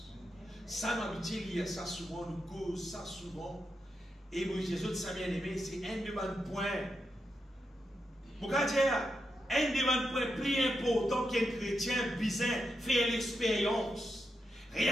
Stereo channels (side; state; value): both; normal; correlation 0.86